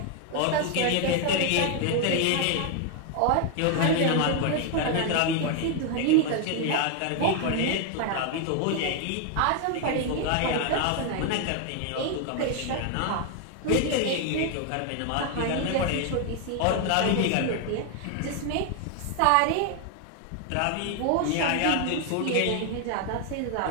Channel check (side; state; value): both; different; correlation 0.01